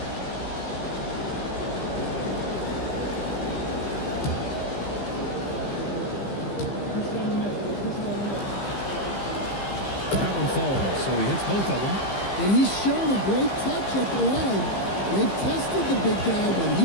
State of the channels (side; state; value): right; late; 15 ms